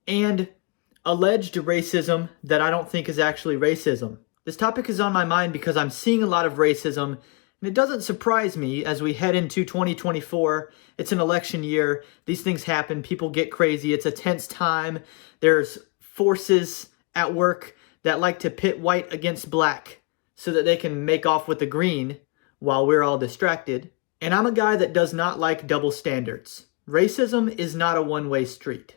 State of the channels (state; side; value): quieter; right; 29.4 dB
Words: and alleged racism that I don't think is actually racism. This topic is on my mind because I'm seeing a lot of racism, and it doesn't surprise me as we head into 2024. It's an election year. These things happen. People get crazy. It's a tense time. There's forces at work that like to pit white against black so that they can make off with the green while we're all distracted. And I'm a guy that does not like double standards. Racism is not a one-way street.